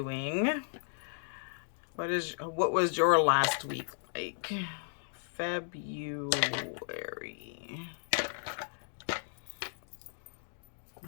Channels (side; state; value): right; silent; digital silence